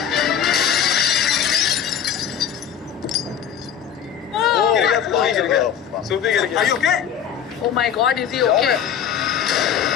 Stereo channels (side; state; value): right; quieter; 8.6 dB